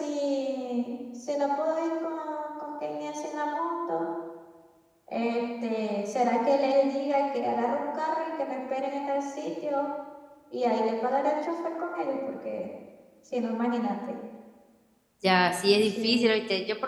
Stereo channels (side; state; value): both; identical; correlation 1.00